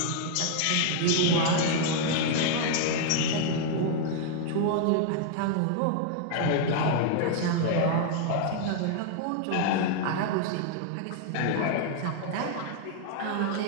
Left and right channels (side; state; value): both; different; correlation 0.00